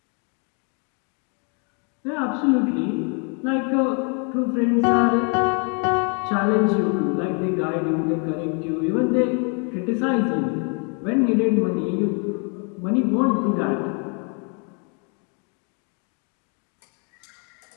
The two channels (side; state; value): right; quieter; 37.2 dB